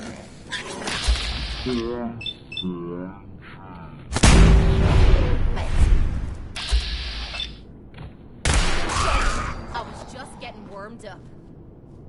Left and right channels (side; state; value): both; identical; correlation 1.00